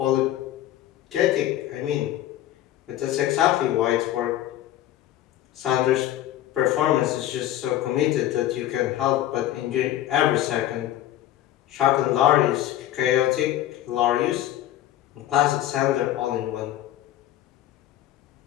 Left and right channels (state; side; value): quieter; right; 13.1 dB